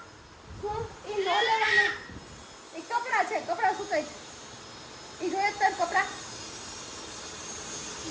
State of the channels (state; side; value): identical; both; correlation 1.00